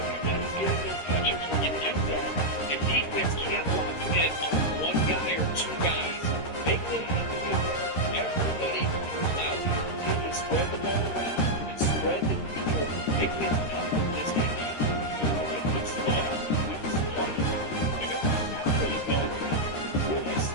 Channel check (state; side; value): late; right; 13 ms